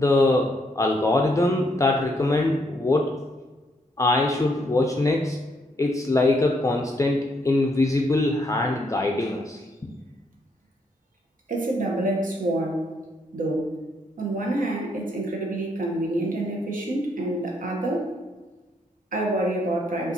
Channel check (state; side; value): normal; both; correlation 0.73